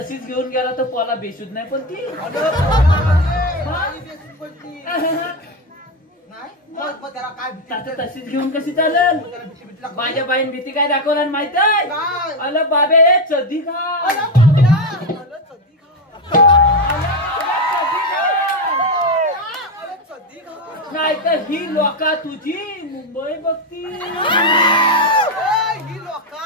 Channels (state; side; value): normal; both; correlation 0.10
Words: घेऊन गेला तर पोला बेशुद्ध नाही पण ती अगं, पोरामध्ये बाई बेसून पडली. नाही? मग त्याला काय भीती आता वाटते? तशीच घेऊन कशी चालेल त्याला भीती लागते. माझ्या बाईन भीती काय दाखवला माहित आहे काय? अल बाबे चदी खा अरे बाबड्या. अरे चड्डी खा. अरे चड्डी खा. नाही तर ही लोका तुझी मुंबई बघती ए, ही